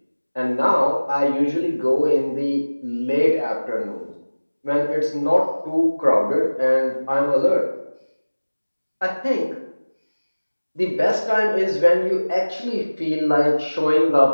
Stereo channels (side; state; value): both; inverted; correlation -1.00